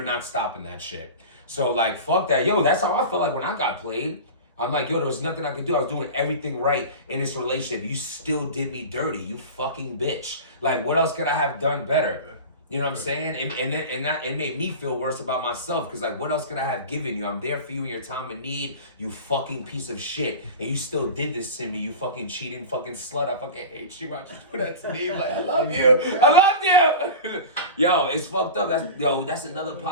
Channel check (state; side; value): inverted; both; correlation -0.30